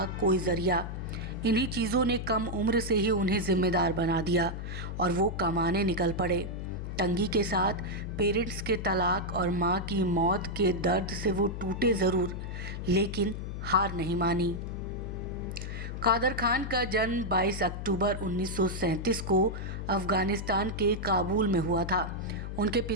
कोई ज़रिया। इन्हीं चीज़ों ने कम उम्र से ही उन्हें ज़िम्मेदार बना दिया और वो कमाने निकल पड़े। तंगी के साथ पेरेंट्स के तलाक और माँ की मौत के दर्द से वो टूटे ज़रूर, लेकिन हार नहीं मानी। कादर खान का जन्म 22 अक्टूबर 1937 को अफ़गानिस्तान के काबुल में हुआ था। उनके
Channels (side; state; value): left; noise; hum, 6 dB below the sound